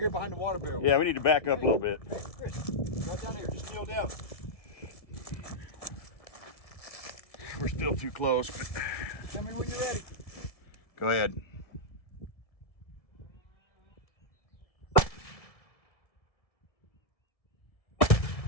behind the water barrel. Yeah, we need to back up a little bit. Hey, Chris, go down here. Just kneel down. We're still too close, but Tell me when you're ready. go ahead.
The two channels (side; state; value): right; late; 1.7 ms